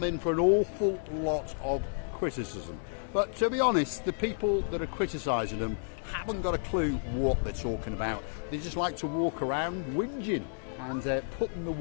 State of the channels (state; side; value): silent; right; digital silence